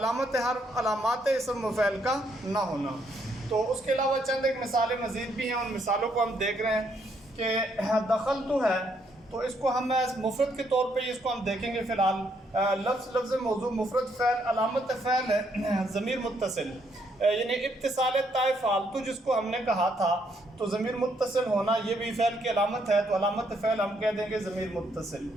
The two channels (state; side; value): normal; both; correlation 0.73